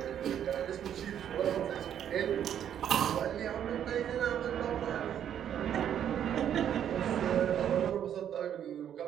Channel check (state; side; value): quieter; left; 9.6 dB